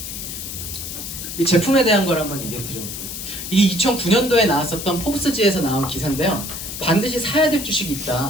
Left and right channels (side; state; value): left; noise; hiss, 7 dB below the sound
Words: 이 제품에 대한 걸 한번 얘기해 드려볼게요. 이게 2009년도에 나왔었던 포브스지에서 나온 기사인데요. 반드시 사야 될 주식이